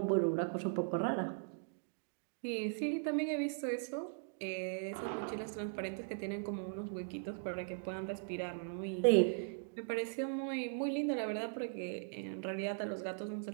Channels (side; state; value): left; silent; digital silence